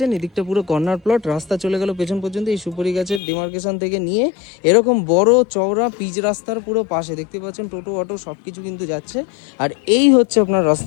এদিকটা পুরো কর্নার প্লট, রাস্তা চলে গেল পেছন পর্যন্ত। এই সুপারি গাছের ডিমার্কেশন থেকে নিয়ে এরকম বড় চওড়া পিচ রাস্তার পুরো পাশে দেখতে পাচ্ছেন টোটো অটো সবকিছু কিন্তু যাচ্ছে। আর এই হচ্ছে আপনার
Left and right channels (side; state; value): right; drops out; at 3.2 s